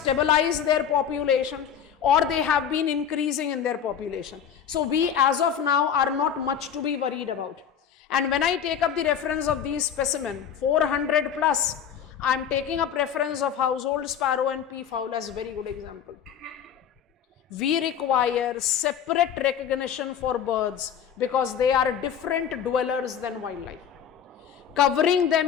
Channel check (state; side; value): quieter; right; 8.3 dB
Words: their population or they have been increasing in their population. So we as of now are not much to be worried about. And when I take up the reference of these specimen, 400 plus, I am taking up reference of household sparrow and peafowl as a very good example. We require separate recognition for birds because they are different dwellers than wildlife. Covering